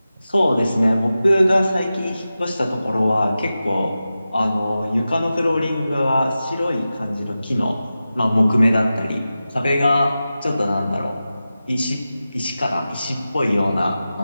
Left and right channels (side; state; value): both; inverted; correlation -0.93